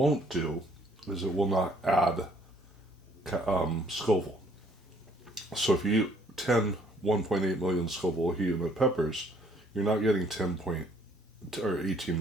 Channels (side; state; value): both; normal; correlation 0.62